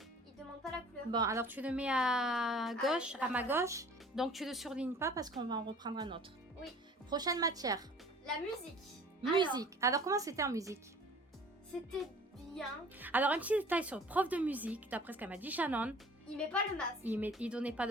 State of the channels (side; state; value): both; normal; correlation 0.48